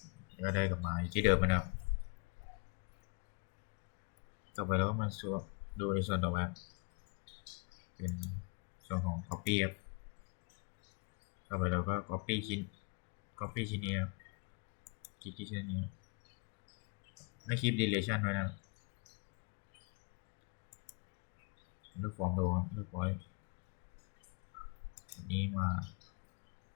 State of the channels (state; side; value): quieter; right; 33.5 dB